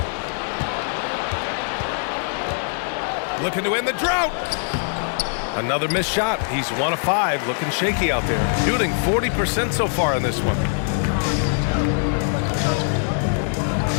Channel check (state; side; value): silent; right; 63 dB below the other